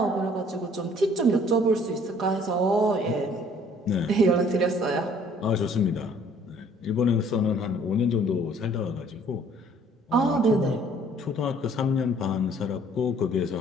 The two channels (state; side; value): normal; both; correlation 0.57